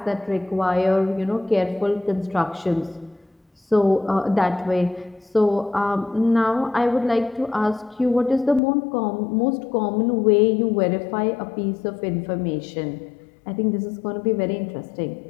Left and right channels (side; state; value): right; drops out; at 8.6 s